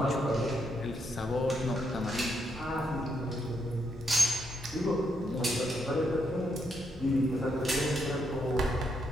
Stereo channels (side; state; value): both; normal; correlation 0.78